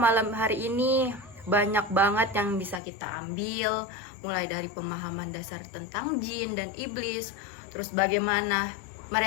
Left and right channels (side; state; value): right; drops out; at 2.8 s